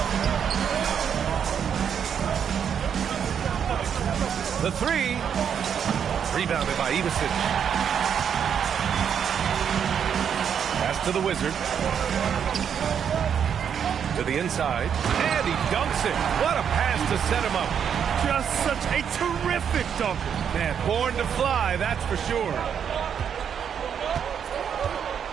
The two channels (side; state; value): left; quieter; 7.9 dB